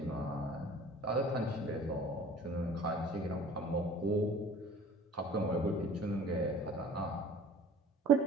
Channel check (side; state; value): both; normal; correlation 0.46